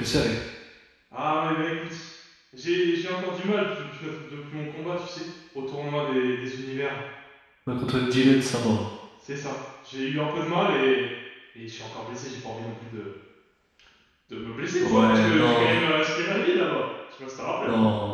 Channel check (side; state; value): both; identical; correlation 1.00